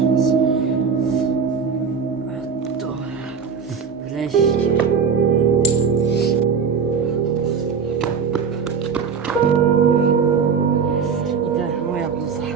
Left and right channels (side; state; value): left; quieter; 6.1 dB